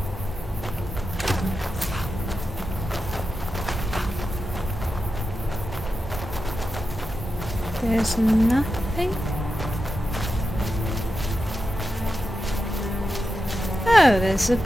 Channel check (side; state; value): both; normal; correlation 0.89